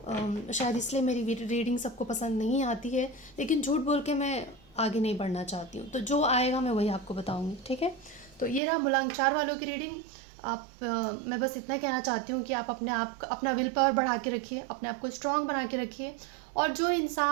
शायद इसलिए मेरी रीडिंग सबको पसंद नहीं आती है, लेकिन झूठ बोल के मैं आगे नहीं बढ़ना चाहती हूँ। तो जो आएगा मैं वही आपको बताऊँगी। ठीक है, तो ये रहा मूलांक 4 वालों की रीडिंग। मैं बस इतना कहना चाहती हूँ कि आप अपना विल पावर बढ़ा के रखिए, अपने आप को स्ट्रांग बना के रखिए। और जो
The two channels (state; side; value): drops out; left; at 8.6 s